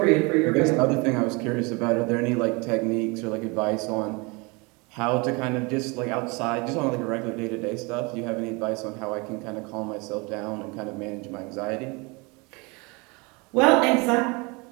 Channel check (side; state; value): left; quieter; 27.9 dB